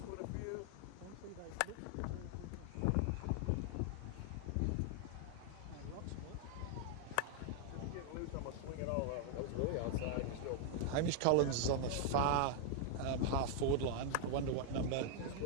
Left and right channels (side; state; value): both; different; correlation 0.00